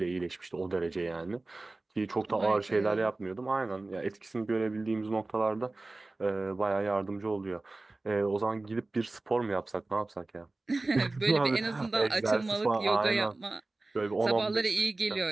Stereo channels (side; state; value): left; quieter; 3.1 dB